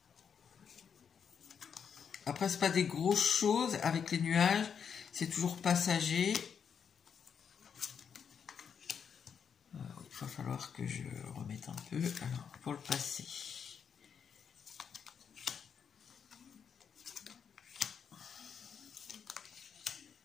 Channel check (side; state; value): right; quieter; 7.1 dB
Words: Après, c'est pas des grosses choses avec les nuages. C'est toujours passager. Il va falloir que je remette un peu. Alors, pour le passer.